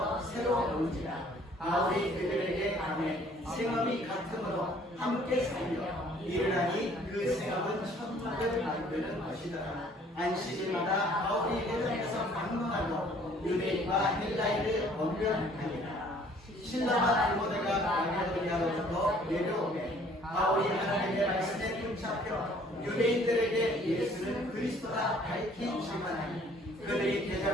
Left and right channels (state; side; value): normal; both; correlation 0.57